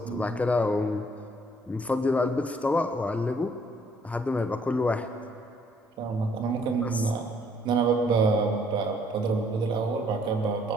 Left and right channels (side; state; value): both; normal; correlation 0.65